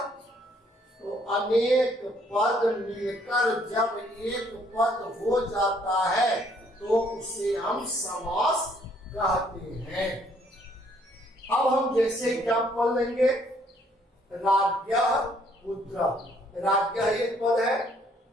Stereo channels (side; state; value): both; normal; correlation 0.65